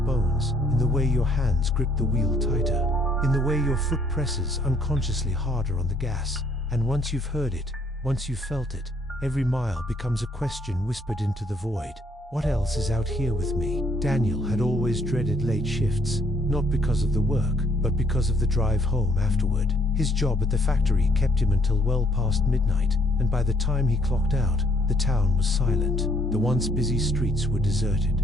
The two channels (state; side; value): normal; both; correlation 0.66